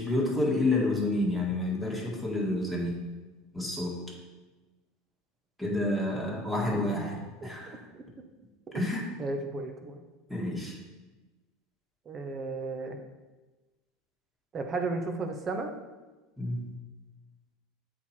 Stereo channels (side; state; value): both; normal; correlation 0.57